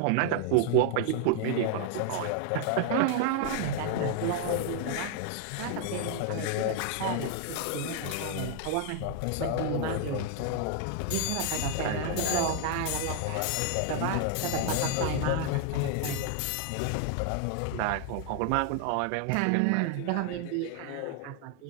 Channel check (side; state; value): both; different; correlation 0.00